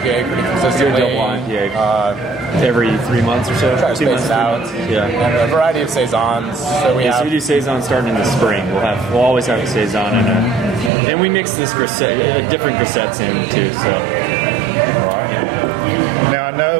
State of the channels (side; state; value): left; drops out; at 10.9 s